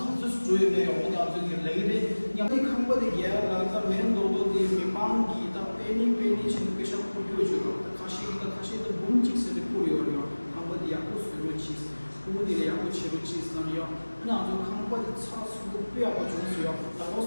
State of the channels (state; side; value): inverted; both; correlation -1.00